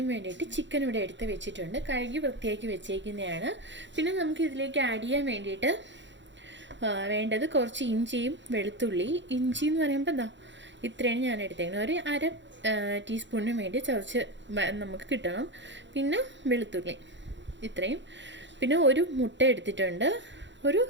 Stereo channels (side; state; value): left; late; 0.53 ms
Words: വേണ്ടിയിട്ട് ചിക്കൻ ഇവിടെ എടുത്ത് വെച്ചിട്ടുണ്ട്. കഴുകി വൃത്തിയാക്കി വെച്ചേക്കുന്നതാണ്. പിന്നെ നമുക്ക് ഇതിലേക്ക് ആഡ് ചെയ്യാൻ വേണ്ടിയിട്ട് വേണ്ടത് കുറച്ച് ഇഞ്ചിയും വെളുത്തുള്ളി. ഇഞ്ചി എന്ന് പറയുമ്പോൾ എന്താ ഇത്രയാണ് ഞാൻ എടുത്തേക്കുന്നത്. ഒരു അര ടീസ്പൂണിന് വേണ്ടി ചതച്ച് നമുക്ക് കിട്ടണം. പിന്നെ വെളുത്തുള്ളി ഇത്രയും. പിന്നെ ഒരു മുട്ട എടുത്തിട്ടുണ്ട്. ഒരു